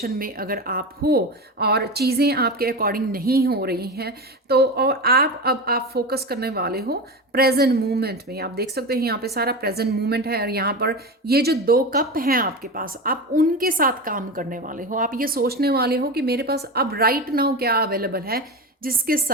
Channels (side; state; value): both; normal; correlation 0.23